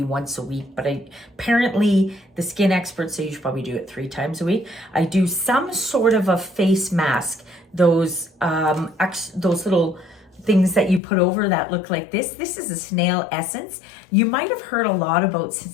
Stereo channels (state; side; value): drops out; right; at 11.0 s